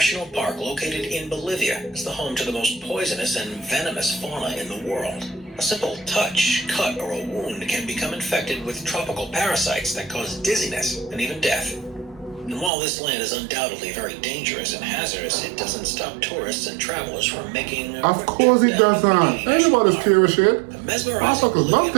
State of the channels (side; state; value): left; drops out; at 12.7 s